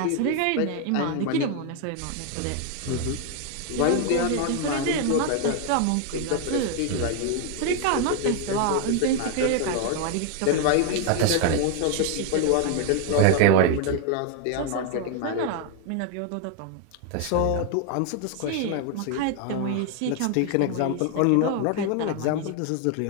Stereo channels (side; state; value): both; different; correlation 0.00